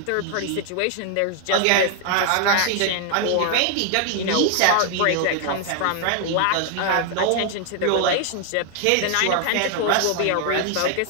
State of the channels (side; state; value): both; different; correlation 0.00